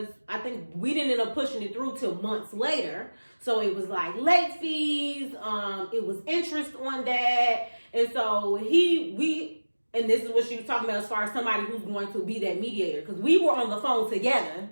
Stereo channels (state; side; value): inverted; both; correlation -1.00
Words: I think we didn't end up pushing it through till months later. So it was late fees, it was interest on that. And so and this is what she was talking about as far as somebody who's going to be that mediator. Because we were on the phone together